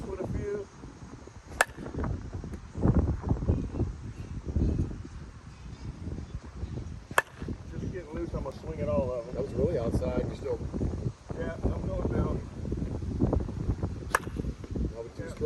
with a few. Just getting loose. I'm going to swing it all of them. That was really outside. You still, Yeah, I'm going middle. now with 2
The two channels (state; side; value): identical; both; correlation 1.00